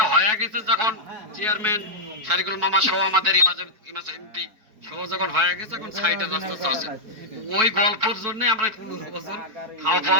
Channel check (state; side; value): late; left; 4.6 ms